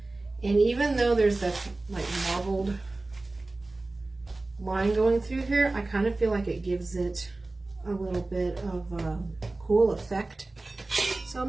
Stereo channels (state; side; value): quieter; left; 3.1 dB